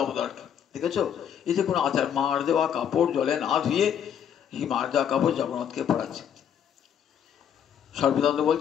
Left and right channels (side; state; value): right; quieter; 8.7 dB